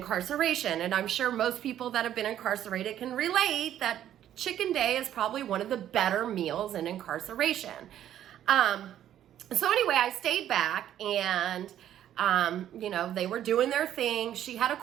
And I'm sure most people that have been incarcerated can relate that chicken day is probably one of the better meals in incarceration. So anyway, I stayed back and, they were doing their thing. She had a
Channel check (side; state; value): left; quieter; 11.2 dB